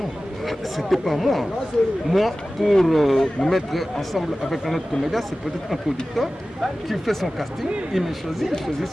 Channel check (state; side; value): normal; both; correlation 0.96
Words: c'était pas moi. Moi, pour me mettre ensemble avec un autre comédien, c'est peut-être un producteur qui fait son casting, il me choisit, il choisit